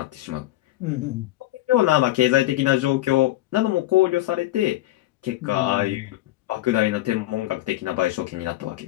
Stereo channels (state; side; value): quieter; right; 16.0 dB